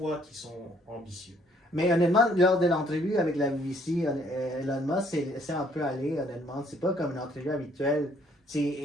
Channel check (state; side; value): normal; both; correlation 0.64